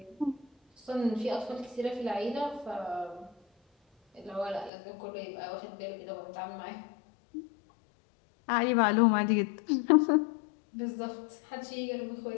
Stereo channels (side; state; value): right; drops out; at 4.7 s